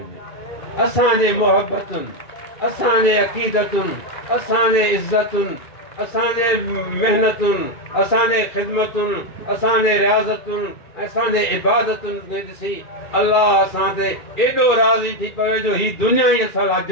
असांजे मोहबतुनि, असांजे अक़ीदतुनि, असांजे इज़तुनि, असांजे महिनतुनि, असांजे ख़िदमतुनि, असांजे रियाज़तुनि, असांजे इबादतुनि खे ॾिसी अलाह असां ते एॾो राज़ी थी पवे जो ही दुनिया ई असां लाइ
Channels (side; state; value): right; late; 1.9 ms